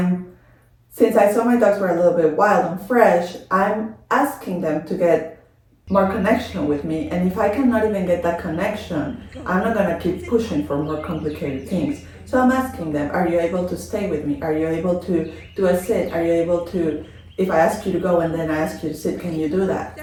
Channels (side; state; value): both; identical; correlation 1.00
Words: since I saw my dogs were a little bit wild and fresh, I'm asking them to get more connection with me. And if I cannot even get that connection, I'm not gonna keep pushing for more complicated things. So I'm asking them, are you able to stay with me? Are you able to do a sit? Are you able to, if I ask you to go and then I ask you to sit, can you do that?